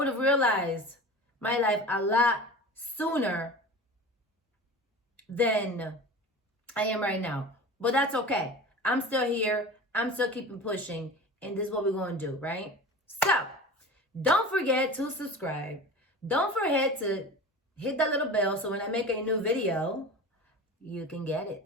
have realized my life a lot sooner than I am right now. But that's okay. I'm still here. I'm still keeping pushing. And this is what we're going to do, right? So, don't forget to subscribe. Don't forget to hit that little bell so when I make a new video, you can get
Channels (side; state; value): both; normal; correlation 0.35